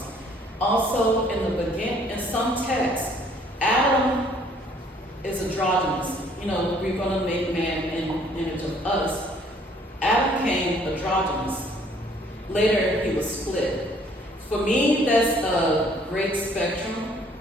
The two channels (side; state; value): both; normal; correlation 0.60